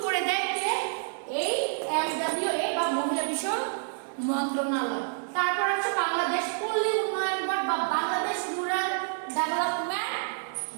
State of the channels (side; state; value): left; silent; digital silence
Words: করে দেয় এই MWA বা মহিলা বিষয়ক মন্ত্রণালয়। তারপর আছে বাংলাদেশ পল্লী উন্নয়ন বোর্ড বা বাংলাদেশ রুরাল ডেভেলপমেন্ট